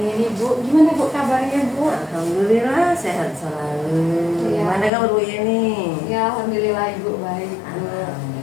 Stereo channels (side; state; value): right; drops out; at 4.9 s